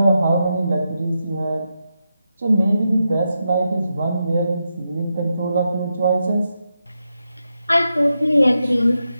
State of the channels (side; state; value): both; inverted; correlation -0.87